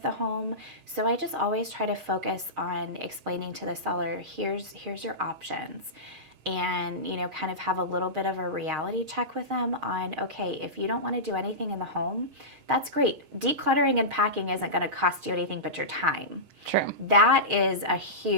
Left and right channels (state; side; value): late; left; 6.4 ms